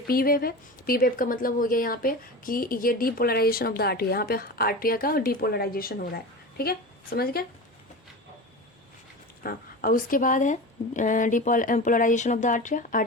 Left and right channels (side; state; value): both; normal; correlation 0.29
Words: पी वेव है, पी वेव का मतलब हो गया यहाँ पे कि ये डीपोलराइजेशन ऑफ द आर्टरिया, यहाँ पे आर्टरिया का डीपोलराइजेशन हो रहा है। ठीक है, समझ गए। हाँ, और उसके बाद है डीपोलराइजेशन ऑफ द आर्टरिया,